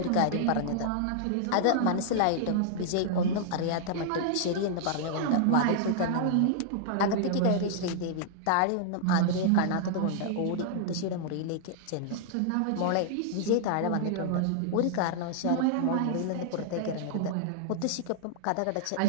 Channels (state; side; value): different; both; correlation -0.01